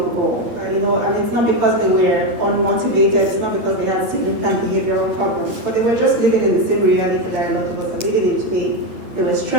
ago, and it's not because they were unmotivated, it's not because they had significant behavioral problems, but they were just living in the same reality that a lot of us are living in today. They were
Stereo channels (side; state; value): left; late; 8.8 ms